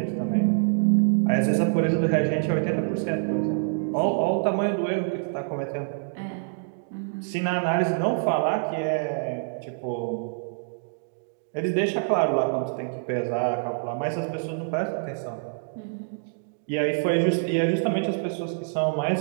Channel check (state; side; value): silent; left; digital silence